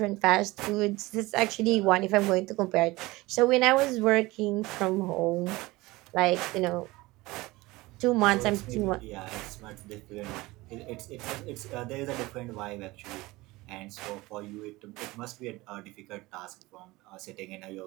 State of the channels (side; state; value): left; quieter; 20.7 dB